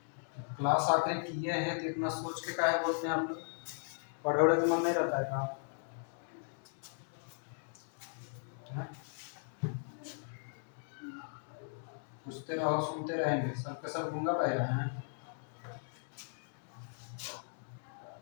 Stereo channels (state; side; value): silent; right; digital silence